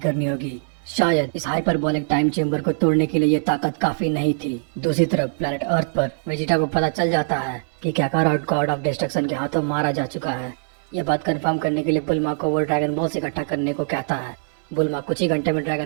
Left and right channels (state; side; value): silent; left; 57 dB below the other